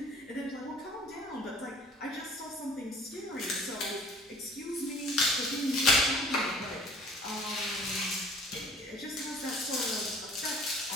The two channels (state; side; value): normal; both; correlation 0.51